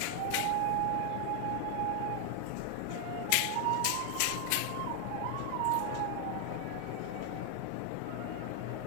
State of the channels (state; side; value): different; both; correlation 0.00